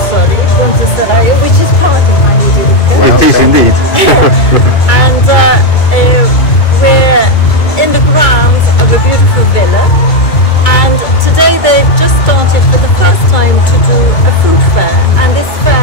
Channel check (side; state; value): right; late; 2.2 ms